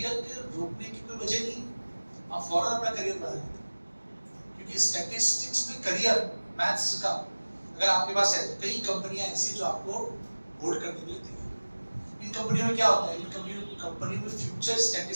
के रोकने की कोई वजह नहीं, आप फौरन अपना करियर बना लेते हैं। क्योंकि स्टैटिस्टिक्स में करियर मैथ्स का अगर आपके पास है तो कई कंपनियां ऐसी जो आपको होल्ड करने के लिए देगी। इन कंपनियों में क्या होता है, इन कंपनियों में फ्यूचर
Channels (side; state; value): both; inverted; correlation -1.00